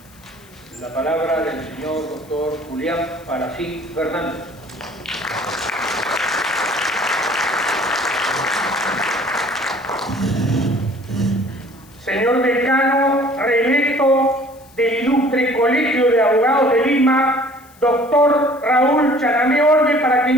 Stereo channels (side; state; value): left; noise; hiss, 27 dB below the sound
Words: La palabra del señor doctor Julián Palacín Fernández. Señor decano reelecto del Ilustre Colegio de Abogados de Lima, doctor Raúl Chanamé Orbe, para quien